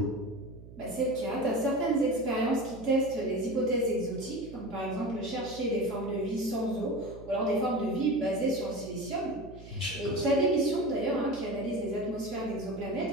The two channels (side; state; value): right; noise; hum, 17 dB below the sound